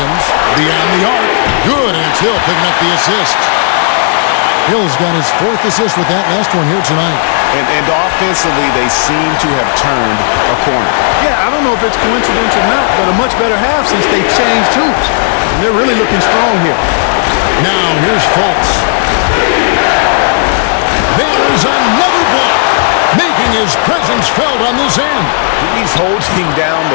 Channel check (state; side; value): silent; right; digital silence